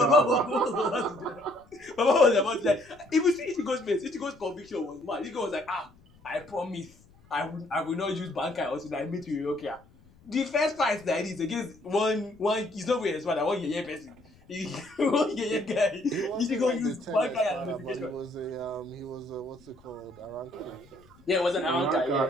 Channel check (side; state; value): left; noise; rumble, 27 dB below the sound